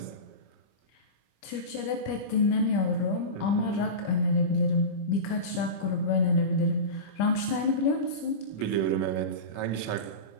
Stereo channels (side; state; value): right; late; 25 ms